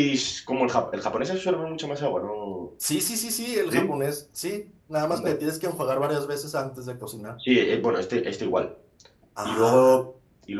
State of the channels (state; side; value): identical; both; correlation 1.00